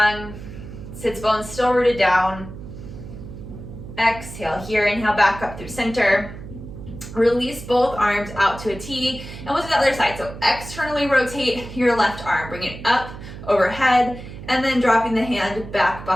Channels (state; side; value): noise; right; hum, 12 dB below the sound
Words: sits bones still rooted down. Exhale here, inhale back up through center. Release both arms out to a T, and we'll do the other side. So externally rotate your left arm, bring it up overhead, and then dropping the hand back